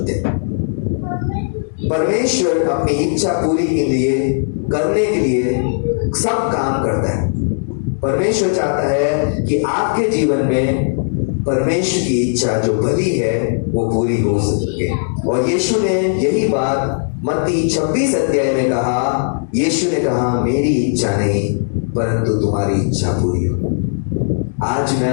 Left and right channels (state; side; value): silent; right; digital silence